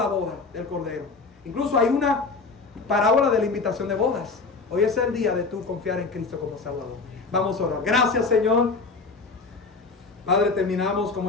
boda del Cordero. Incluso hay una parábola de la invitación de bodas. Hoy es el día de tú confiar en Cristo como Salvador. Vamos a orar. Gracias, Señor. Padre, terminamos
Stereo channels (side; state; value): right; quieter; 4.2 dB